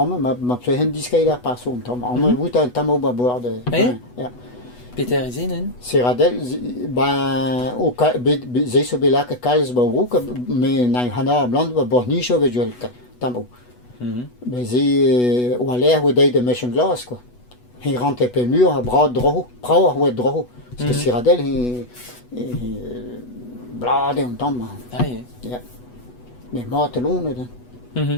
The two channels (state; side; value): late; right; 8.1 ms